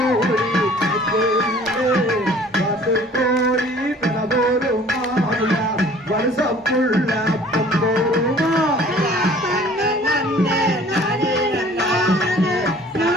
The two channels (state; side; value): normal; both; correlation 0.51